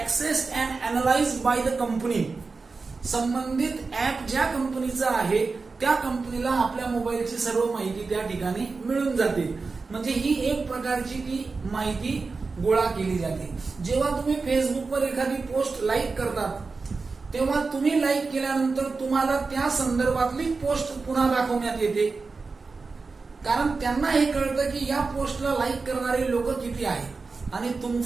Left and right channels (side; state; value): left; quieter; 4.2 dB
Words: and analysed by the company. संबंधित ऍप ज्या कंपनीचा आहे त्या कंपनीला आपल्या मोबाईलची सर्व माहिती त्या ठिकाणी मिळून जाते. म्हणजे ही एक प्रकारची ती माहिती गोळा केली जाते. जेव्हा तुम्ही फेसबुकवर एखादी पोस्ट लाईक करतात, तेव्हा तुम्ही लाईक केल्यानंतर तुम्हाला त्या संदर्भातली पोस्ट पुन्हा दाखवण्यात येते, कारण त्यांना हे कळतं की या पोस्टला लाईक करणारे लोक किती आहेत. आणि